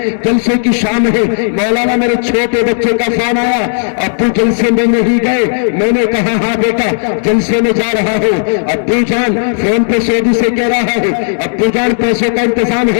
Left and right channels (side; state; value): right; silent; digital silence